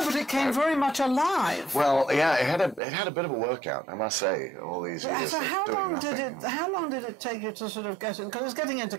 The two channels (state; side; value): drops out; left; at 2.8 s